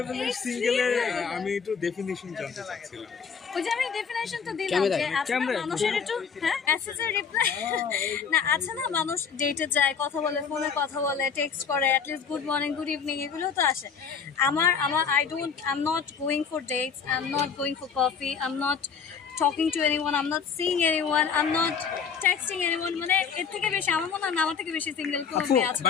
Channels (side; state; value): right; quieter; 6.3 dB